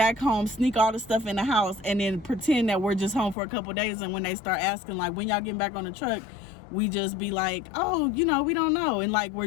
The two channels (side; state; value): right; drops out; at 3.4 s